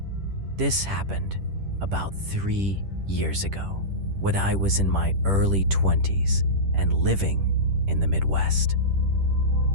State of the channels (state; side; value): late; left; 10 ms